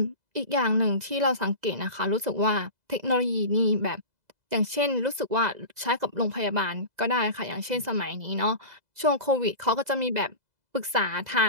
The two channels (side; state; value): left; late; 2.0 ms